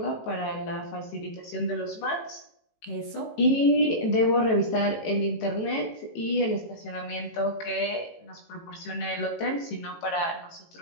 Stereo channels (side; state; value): right; late; 18 ms